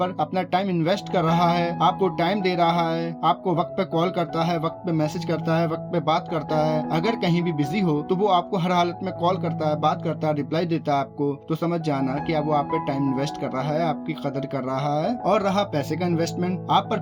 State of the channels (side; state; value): both; identical; correlation 1.00